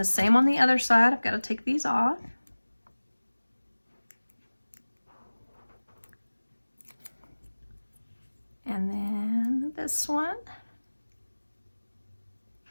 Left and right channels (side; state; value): both; inverted; correlation -1.00